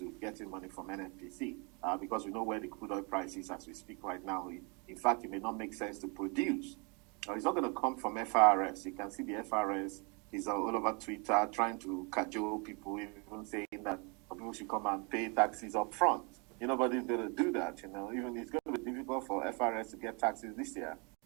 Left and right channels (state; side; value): quieter; left; 33.0 dB